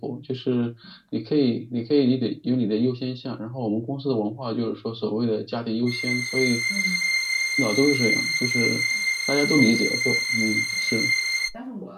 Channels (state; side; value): identical; both; correlation 1.00